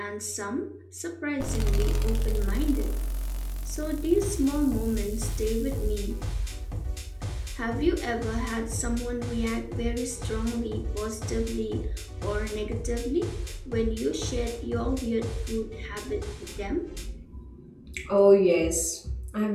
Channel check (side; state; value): both; identical; correlation 1.00